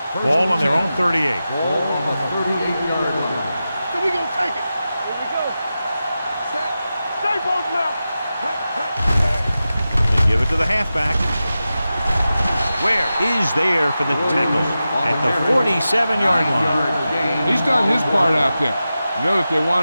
Ball on their own 38. Ball on the 38-yard line. So we gonna take it. Here we go. Set. Stay both now. They give it to the halfback. Where is there for the tackle at the 47-yard line. He's done his part out there. You know that they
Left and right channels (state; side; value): inverted; both; correlation -0.93